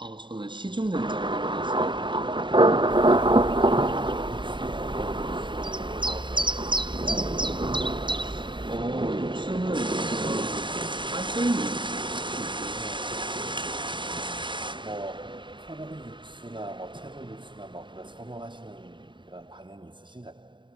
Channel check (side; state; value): left; late; 0.23 ms